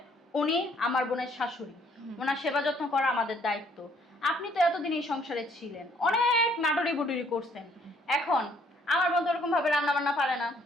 উনি আমার বোনের শাশুড়ি, ওনার সেবা যত্ন করা আমাদের দায়িত্ব। আপনি তো এতদিন এই সংসারে ছিলেন, অনেক নাটরি বুটুরি করছেন। এখন আমার বোন তো এরকম ভাবে রান্না বান্না পারে না,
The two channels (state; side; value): normal; both; correlation 0.65